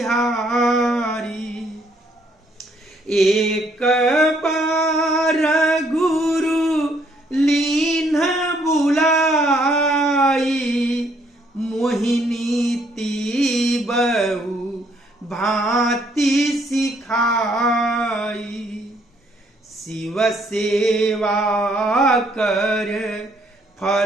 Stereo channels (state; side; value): normal; both; correlation 0.68